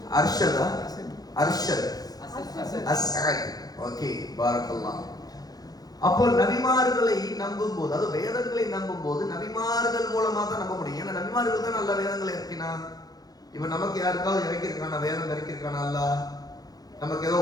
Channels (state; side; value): late; right; 0.19 ms